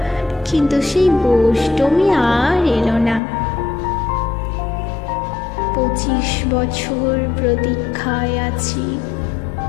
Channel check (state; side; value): drops out; right; at 3.2 s